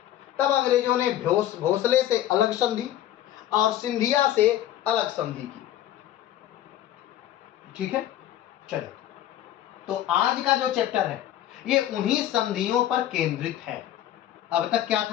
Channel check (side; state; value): right; quieter; 12.4 dB